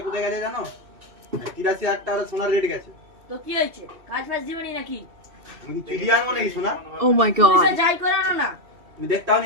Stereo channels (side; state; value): left; late; 2.7 ms